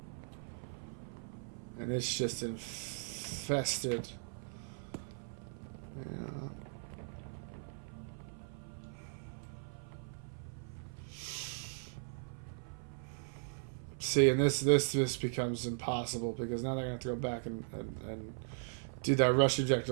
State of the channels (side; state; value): left; silent; 52 dB below the other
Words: And it's just infested. Yeah. See, and this becomes impossible because now they're gonna have to go back and do that rush